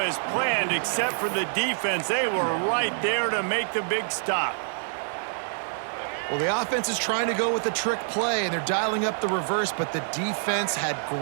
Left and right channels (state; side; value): silent; left; digital silence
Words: planned except for the defense. They were right there to make the big stop. Well, the offense is trying to go with a trick play, and they're dialing up the reverse, but the defense had